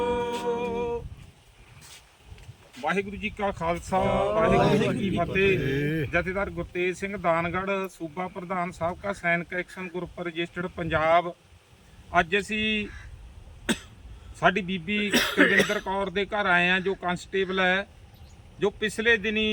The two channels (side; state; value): both; identical; correlation 1.00